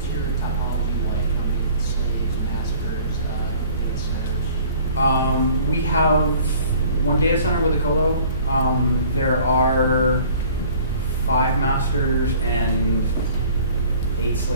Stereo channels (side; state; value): both; inverted; correlation -0.51